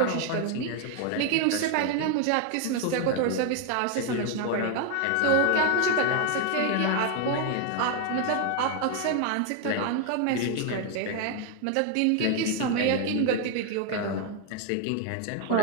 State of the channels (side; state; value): both; different; correlation 0.01